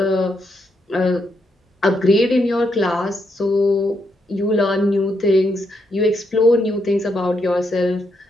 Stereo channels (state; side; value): normal; both; correlation 0.79